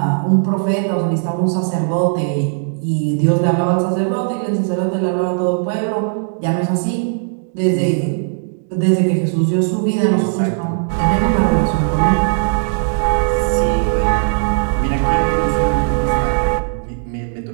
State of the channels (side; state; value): left; silent; digital silence